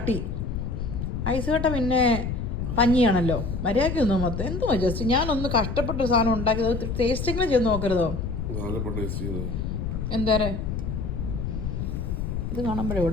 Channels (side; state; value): left; noise; rumble, 3 dB below the sound